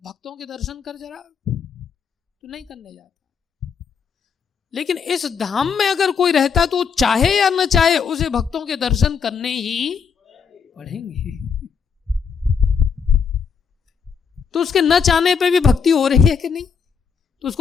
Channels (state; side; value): quieter; right; 6.3 dB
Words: भक्तों के दर्शन कर जरा, तो नहीं करने जाता। लेकिन इस धाम में अगर कोई रहता तो चाहे या न चाहे उसे भक्तों के दर्शन करने ही पड़ेंगे। तो उसके न चाहने पे भी भक्ति हो रही है कि नहीं? तो